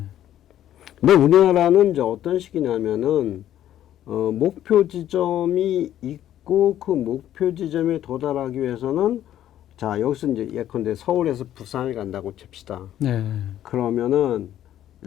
우리나라는 이제 어떤 식이냐면은 목표 지점이 있고 그 목표 지점에 도달하기 위해서는 자 여기서 이제 예컨대 서울에서 부산을 간다고 칩시다. 그러면은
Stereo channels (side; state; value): right; quieter; 11.8 dB